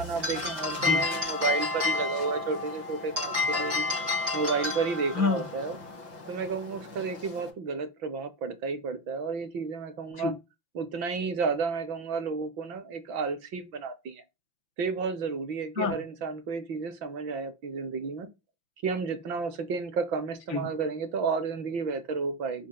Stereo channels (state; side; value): late; left; 5.9 ms